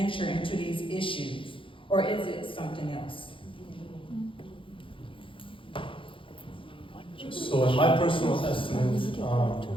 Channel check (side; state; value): right; late; 0.25 ms